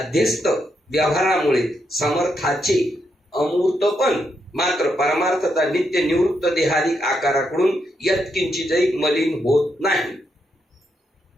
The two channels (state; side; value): normal; both; correlation 0.80